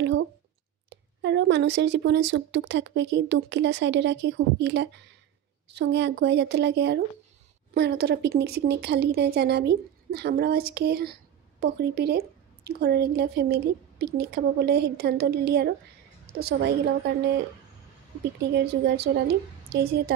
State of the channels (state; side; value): quieter; left; 10.3 dB